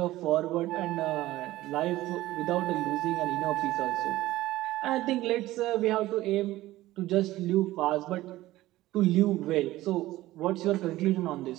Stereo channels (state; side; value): quieter; left; 16.5 dB